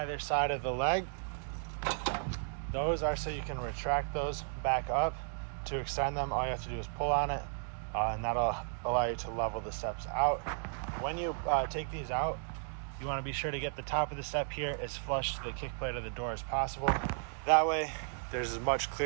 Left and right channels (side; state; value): left; silent; digital silence